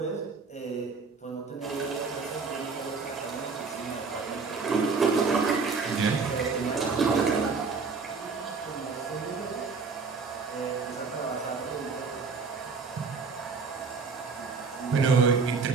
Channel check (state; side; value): quieter; left; 4.8 dB